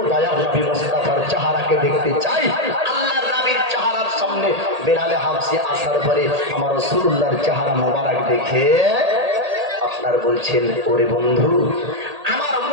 দয়ার নবী মুস্তাফার চেহারাকে দেখতে চাই। আল্লাহর নবীর চেহারার সামনে বেলালে হাবশি আসার পরে আমার রাসূলুল্লাহর চেহারা মোবারক দেখে আপনার বলছেন, ওরে বন্ধু, আমার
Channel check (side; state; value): left; late; 1.8 ms